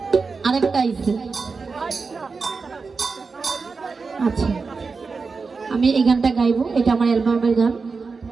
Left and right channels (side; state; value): left; quieter; 4.6 dB